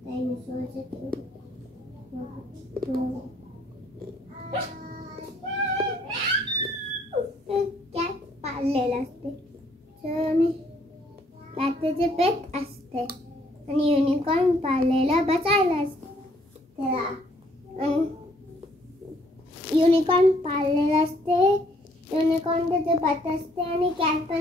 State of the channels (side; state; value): both; normal; correlation 0.65